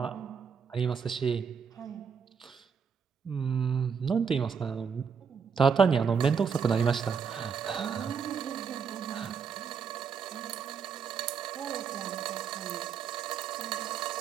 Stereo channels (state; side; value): quieter; left; 6.3 dB